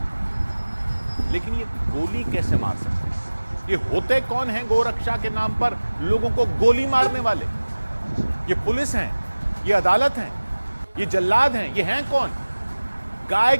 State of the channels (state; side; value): inverted; both; correlation -1.00